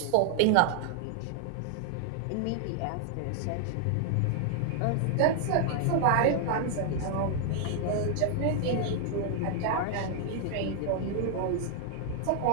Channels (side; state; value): both; different; correlation 0.00